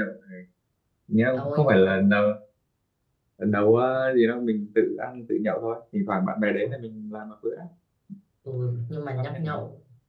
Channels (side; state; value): both; identical; correlation 1.00